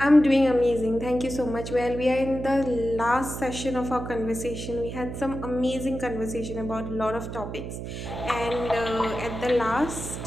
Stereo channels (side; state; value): right; noise; hum, 7 dB below the sound